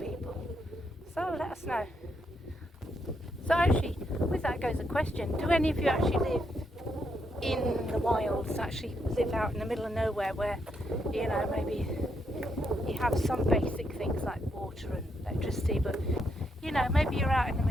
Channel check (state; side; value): normal; both; correlation 0.78